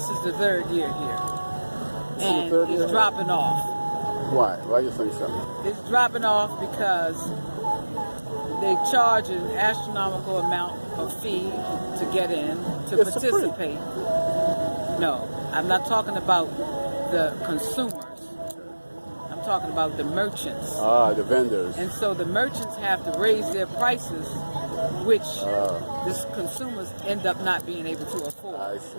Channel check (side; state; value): both; inverted; correlation -1.00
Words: is the third year here. And it's dropping off. Why? Why do you think so? It's dropping off because they charge an astronomical amount of fee to get in, to participate. No, I'm not talking about the consumers. I'm talking about the merchants. The vendors. And so the merchants have to raise their prices, which the consumers end up not being able to afford. I see,